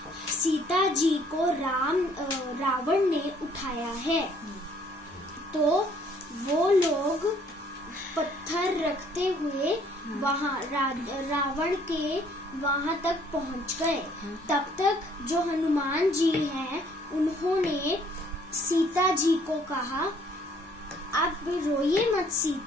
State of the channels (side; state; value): both; normal; correlation 0.61